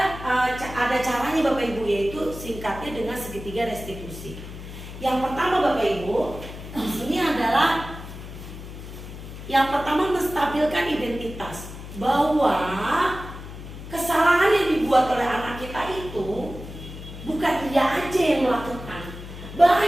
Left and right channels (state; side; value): noise; left; hum, 12 dB below the sound